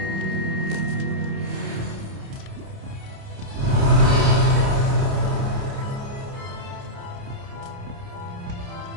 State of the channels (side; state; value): left; late; 29 ms